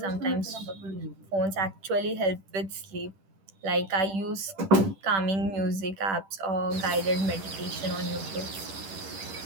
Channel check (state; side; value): late; left; 10 ms